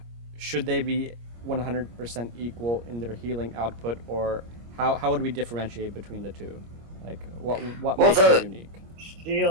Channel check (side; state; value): left; late; 25 ms